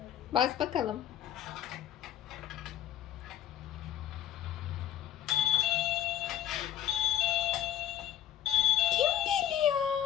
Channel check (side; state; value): right; quieter; 11.4 dB